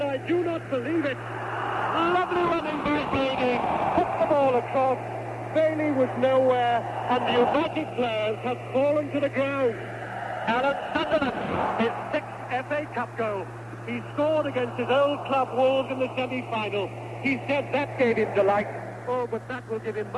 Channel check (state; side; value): identical; both; correlation 1.00